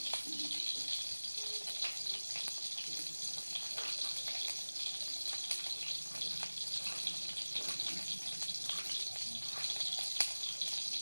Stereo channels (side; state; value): both; inverted; correlation -1.00